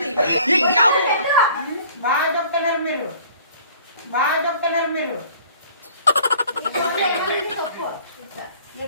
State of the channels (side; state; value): both; inverted; correlation -0.52